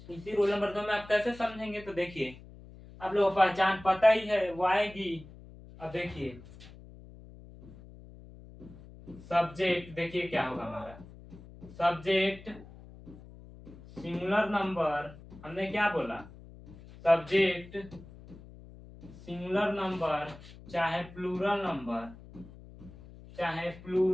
इसी रूल नंबर 2 में आप कैसे समझेंगे? तो देखिए आप लोगों को पहचान पता ही है, वो आएगी। अब देखिए सब्जेक्ट, देखिए क्या होगा हमारा सब्जेक्ट सिंगुलर नंबर। हमने क्या बोला? सब्जेक्ट सिंगुलर नंबर चाहे प्लूरल नंबर, चाहे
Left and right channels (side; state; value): left; noise; hum, 18 dB below the sound